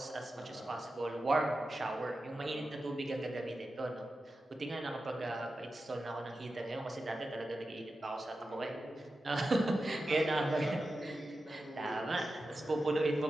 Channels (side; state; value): both; normal; correlation 0.92